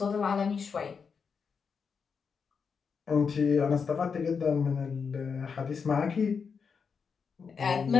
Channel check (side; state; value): right; quieter; 5.9 dB